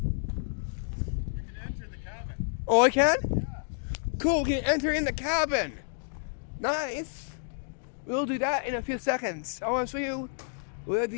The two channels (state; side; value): silent; right; digital silence